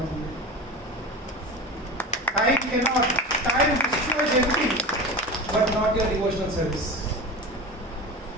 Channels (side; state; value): both; normal; correlation 0.29